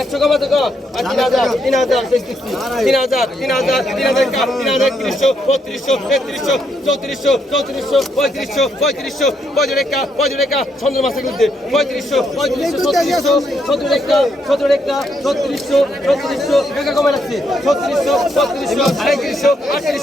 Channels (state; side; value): normal; both; correlation 0.77